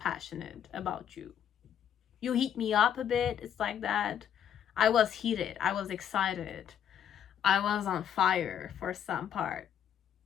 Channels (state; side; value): quieter; right; 9.3 dB